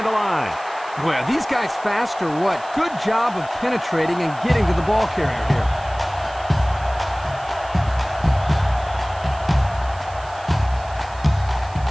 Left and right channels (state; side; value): noise; right; hiss, 22 dB below the sound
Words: the line. Boy, are these guys fast or what? Good job of penetrating and getting to the ball carrier here.